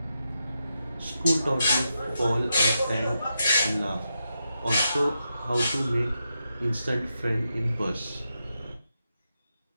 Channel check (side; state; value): both; inverted; correlation -0.86